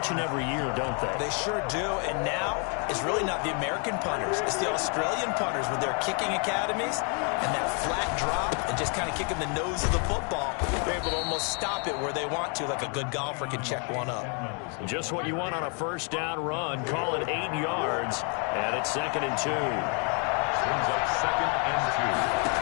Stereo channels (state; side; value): quieter; right; 38.5 dB